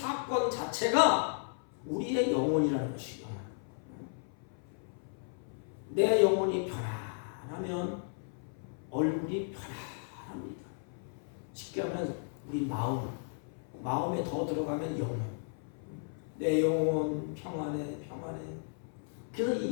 자체가 우리의 영혼이라는 것이요. 내 영혼이 편안하면 얼굴이 편안합니다. 쉽게 하면 우리 마음에 더 들어가면 영혼. 내 영혼 평안해. 그래서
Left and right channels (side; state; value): right; silent; 55 dB below the other